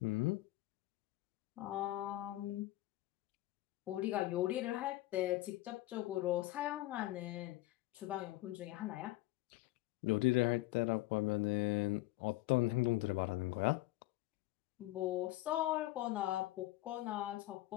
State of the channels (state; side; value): quieter; right; 17.7 dB